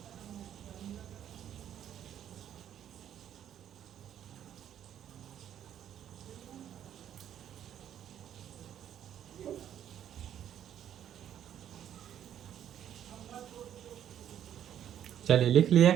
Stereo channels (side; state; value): left; quieter; 10.2 dB